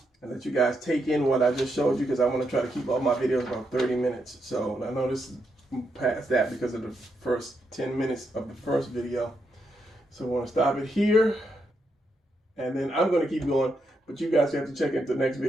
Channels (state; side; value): normal; both; correlation 0.81